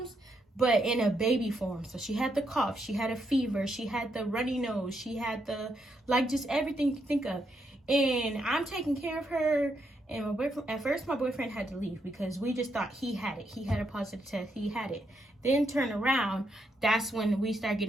but in a baby form. So she had the cough, she had a fever, she had the runny nose, she had the, like, just everything you can think of. And I'm taking care of her. And my boyfriend, at first my boyfriend had to leave because we just thought he had it. He had a positive test, he had it. Then turn around, that's when we started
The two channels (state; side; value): normal; both; correlation 0.79